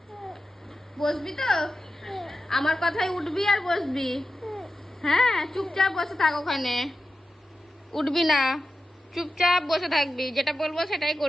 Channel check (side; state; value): both; normal; correlation 0.91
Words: বসবি তো? আমার কথায় উঠবি আর বসবি। হ্যাঁ, চুপচাপ বসে থাক ওখানে, উঠবি না, চুপচাপ বসে থাকবি, যেটা বলবো সেটাই